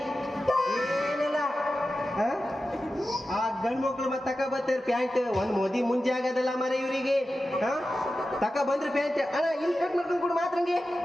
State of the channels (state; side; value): normal; both; correlation 0.93